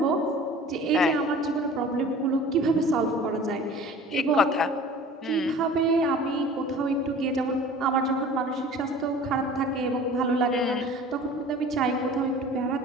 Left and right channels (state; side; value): normal; both; correlation 0.44